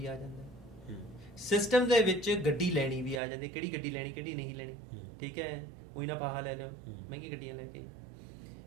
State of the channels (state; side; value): drops out; left; at 3.2 s